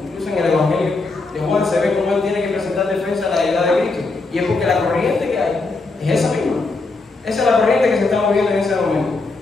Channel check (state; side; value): quieter; right; 3.6 dB